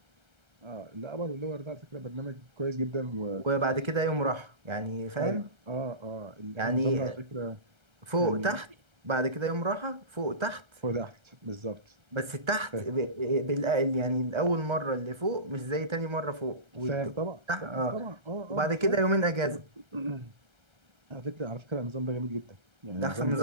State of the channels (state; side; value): late; left; 1.3 ms